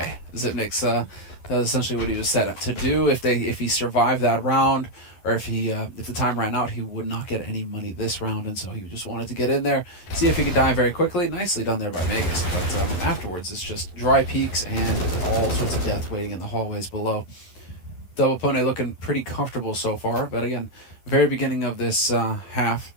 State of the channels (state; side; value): late; right; 11 ms